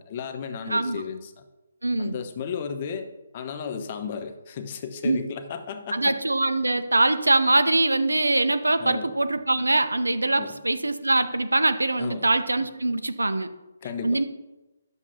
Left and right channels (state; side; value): inverted; both; correlation -0.94